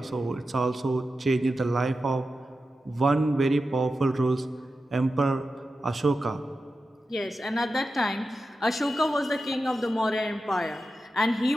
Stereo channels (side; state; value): both; normal; correlation 0.91